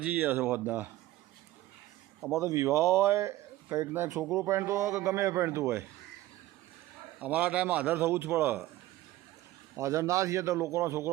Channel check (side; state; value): left; quieter; 16.0 dB